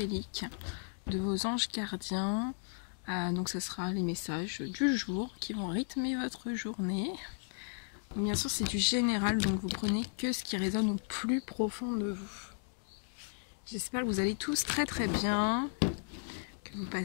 de vos anges gardiens. Donc ça sera les messages du jour qui vont rythmer votre journée. Bien sûr c'est du général, donc vous prenez que ce qui résonne au plus profond de vous. J'espère que vous allez tous très bien, que vous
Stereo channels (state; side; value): silent; right; 54 dB below the other